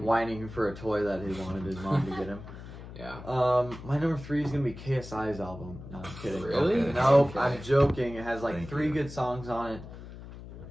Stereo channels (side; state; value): left; noise; hum, 14 dB below the sound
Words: for a toy that he wanted his mom to get him. Yeah. My number 3 is gonna be KSI's album. No, I'm kidding. Really? Okay. No, Okay. I'm joking. It has like Thank 3 you. good songs on it.